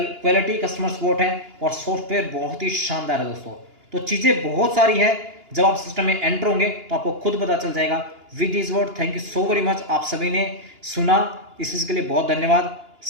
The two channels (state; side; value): late; left; 2.9 ms